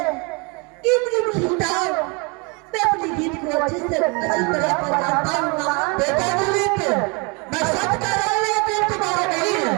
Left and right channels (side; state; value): left; quieter; 30.9 dB